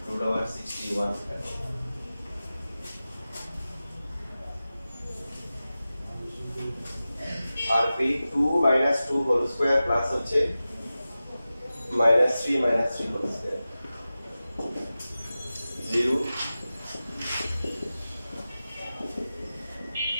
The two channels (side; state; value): both; inverted; correlation -0.95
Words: √61 আর পি 2 - 2 হোল স্কয়ার প্লাস হচ্ছে -3 - 3 হোল স্কয়ার 0